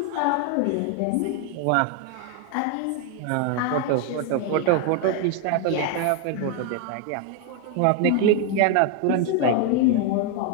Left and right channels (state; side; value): different; both; correlation 0.01